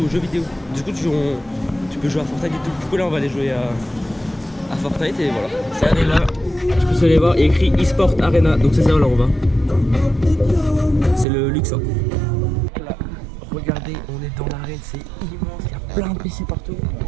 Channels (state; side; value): drops out; left; at 11.2 s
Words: jeux vidéo. Du coup, tu peux jouer à Fortnite et tout. Du coup, là, on va aller jouer à Fortnite et voilà. Regardez là, je peux aller voir, il y a écrit eSport Arena. Donc c'est ça, là, on va. C'est le Luxor. Là, regardez, on est dans l'arène, c'est immense, il y a plein de PC partout.